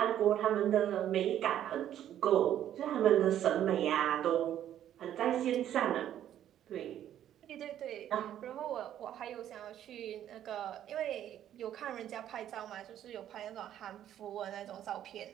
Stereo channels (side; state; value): left; quieter; 11.1 dB